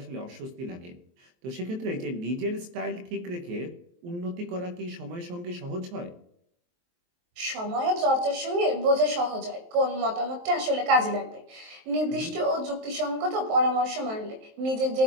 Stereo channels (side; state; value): left; late; 23 ms